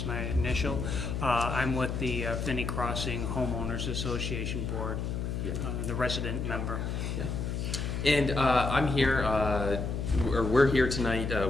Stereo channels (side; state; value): left; noise; hum, 2 dB below the sound